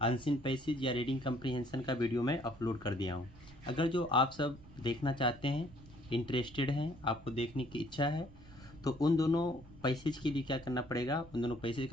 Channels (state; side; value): noise; right; rumble, 20 dB below the sound